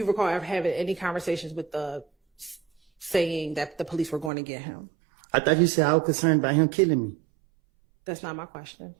recall ever having any conversations with Thug saying that the police were going to get him? I thought you said I was concerned about him killing me. That's not my question.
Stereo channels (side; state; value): left; drops out; at 4.3 s